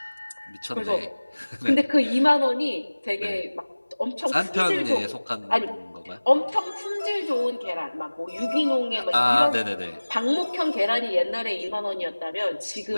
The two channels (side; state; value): both; inverted; correlation -1.00